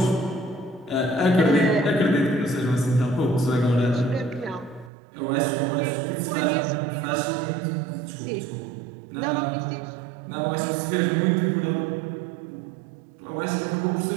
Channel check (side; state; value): left; drops out; at 4.9 s